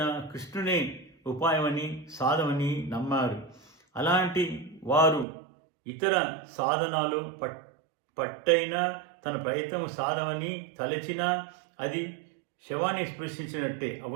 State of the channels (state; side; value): drops out; left; at 5.2 s